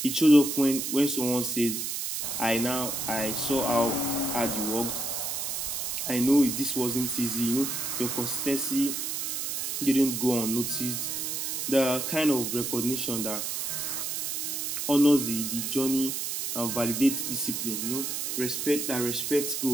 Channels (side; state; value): right; noise; hiss, 2 dB below the sound